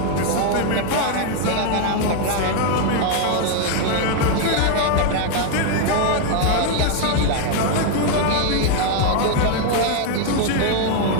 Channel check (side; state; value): both; different; correlation 0.00